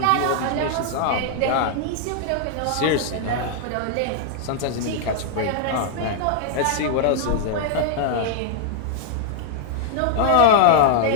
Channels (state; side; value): different; both; correlation -0.01